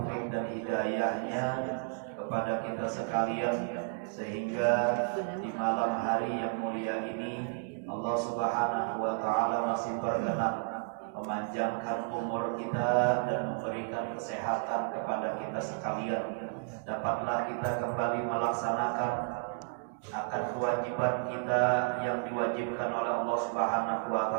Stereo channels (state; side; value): silent; left; digital silence